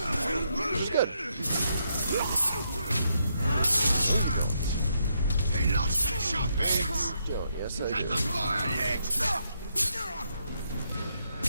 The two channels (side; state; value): both; inverted; correlation -0.78